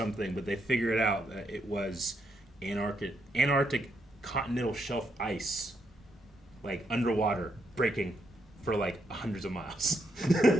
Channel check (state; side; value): normal; both; correlation 0.78